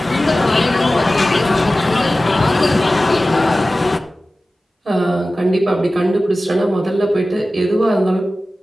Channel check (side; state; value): both; normal; correlation 0.96